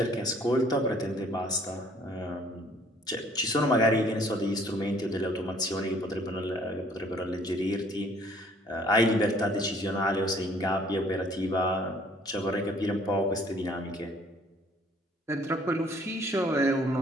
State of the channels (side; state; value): both; normal; correlation 0.58